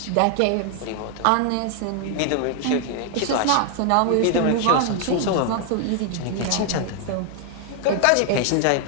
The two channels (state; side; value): different; both; correlation 0.00